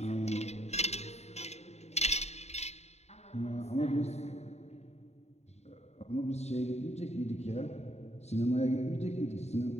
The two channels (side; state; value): right; late; 0.32 ms